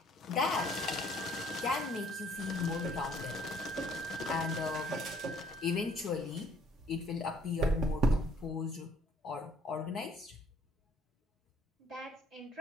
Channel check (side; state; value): both; normal; correlation 0.60